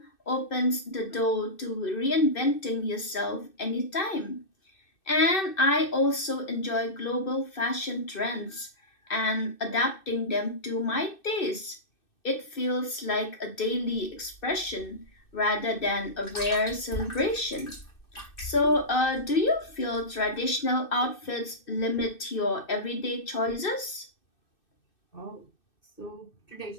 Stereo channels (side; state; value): right; late; 2.6 ms